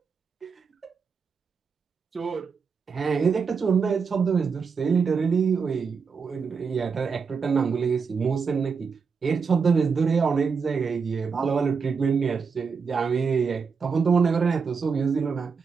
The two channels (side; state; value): left; quieter; 5.6 dB